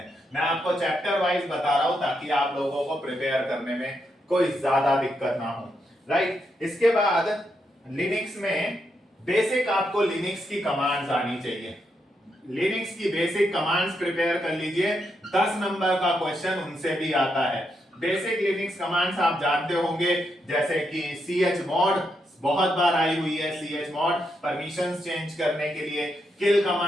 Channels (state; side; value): normal; both; correlation 0.81